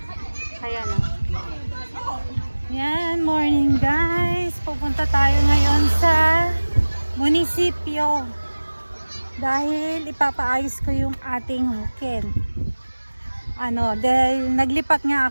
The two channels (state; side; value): inverted; both; correlation -1.00